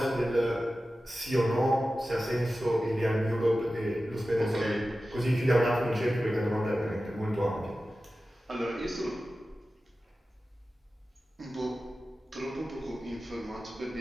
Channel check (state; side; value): normal; both; correlation 0.94